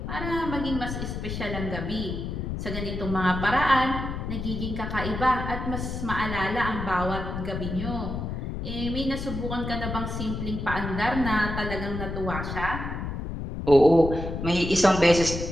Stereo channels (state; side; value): noise; left; rumble, 5 dB below the sound